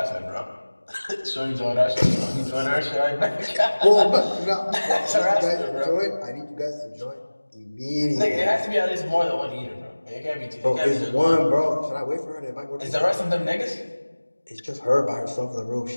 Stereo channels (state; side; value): inverted; both; correlation -1.00